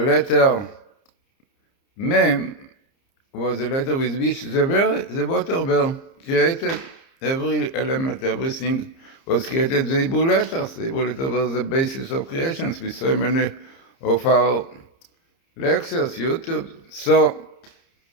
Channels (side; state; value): right; late; 30 ms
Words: Mem was a letter with which the water were created. Every element, everything was created. The Hebrew letters. The Hebrew letters were the basis of creations with so many of our lectures, YouTube. So